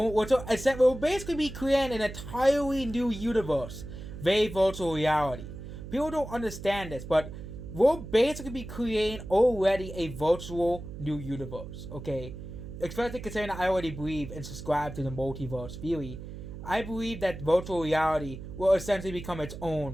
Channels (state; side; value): noise; right; hum, 11 dB below the sound